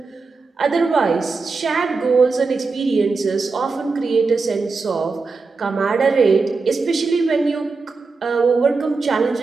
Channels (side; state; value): left; quieter; 4.3 dB